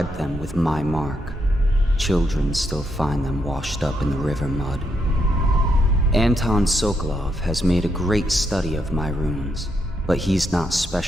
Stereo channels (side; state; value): both; normal; correlation 0.79